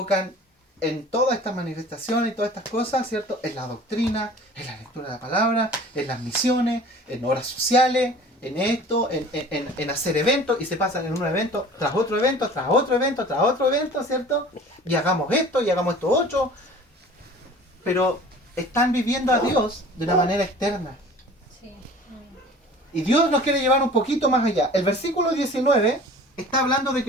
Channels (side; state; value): both; normal; correlation 0.44